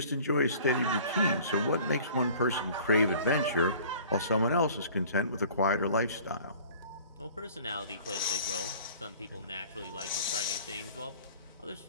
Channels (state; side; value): inverted; both; correlation -0.48